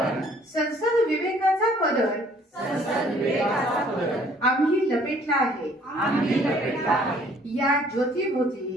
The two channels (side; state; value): both; normal; correlation 0.59